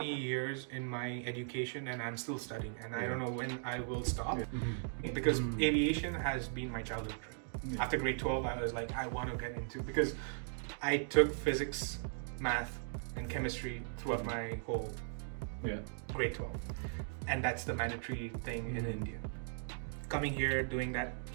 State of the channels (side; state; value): left; silent; digital silence